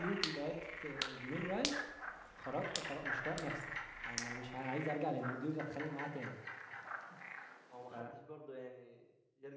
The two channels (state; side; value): identical; both; correlation 1.00